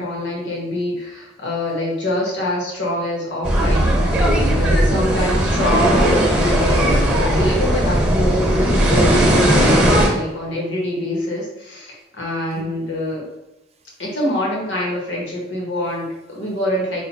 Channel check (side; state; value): both; normal; correlation 0.63